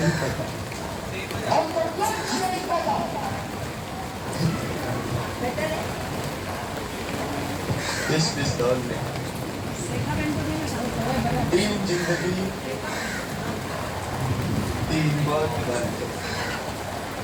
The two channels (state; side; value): identical; both; correlation 1.00